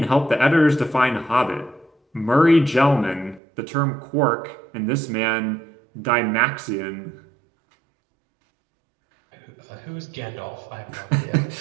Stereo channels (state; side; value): drops out; left; at 3.4 s